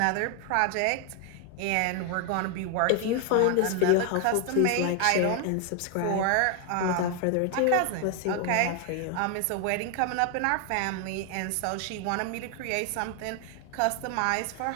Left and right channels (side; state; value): both; different; correlation 0.00